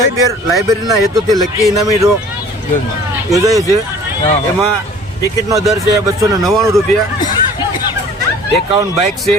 લાઇબ્રેરીના હેતુથી લકી ઇનામી ડ્રો યોજાય છે. એમાં ટિકિટનો દર છે 299 રૂપિયા. 51 બાઇક છે,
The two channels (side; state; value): both; normal; correlation 0.49